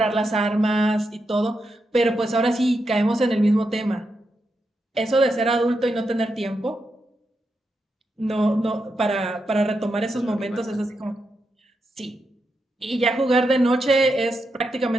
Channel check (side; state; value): both; normal; correlation 0.85